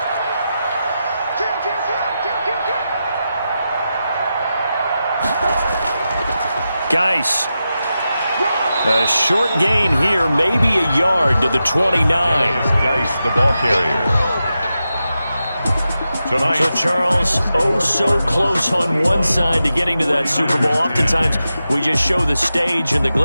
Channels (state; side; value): inverted; both; correlation -0.90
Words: Geis. A short gain here, maybe a yard to the 29. Geis, the ball carrier. Tonight. So, Charles, oh so close on one side to getting to that Super Bowl. Oftentimes, we just show the stage and the